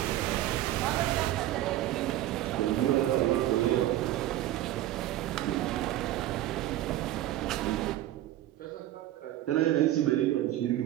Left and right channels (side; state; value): left; quieter; 14.0 dB